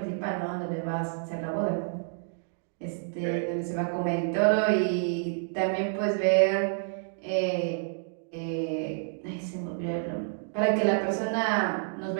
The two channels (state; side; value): silent; left; digital silence